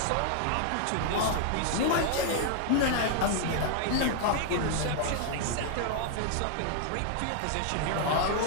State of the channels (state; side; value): different; both; correlation 0.00